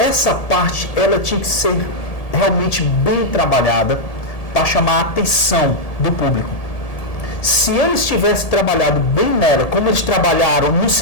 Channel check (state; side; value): late; right; 1.7 ms